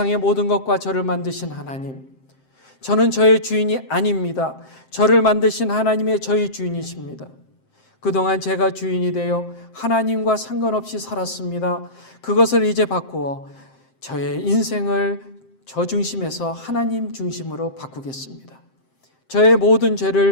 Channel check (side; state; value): right; late; 7.6 ms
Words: 모든 것과 저를 만드신 하나님, 저는 저의 주인이 아닙니다. 저를 만드신 하나님의 저의 주인이십니다. 그동안 제가 주인이 되어 하나님과 상관없이 살았습니다. 그것을 이제 바꾸어 저의 인생을 저 중심에서 하나님 중심으로 바꾸겠습니다. 저의 모든